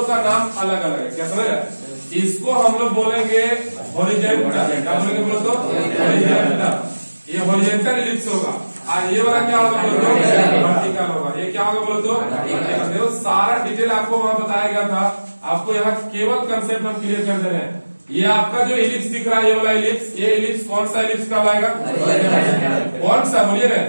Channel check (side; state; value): both; inverted; correlation -1.00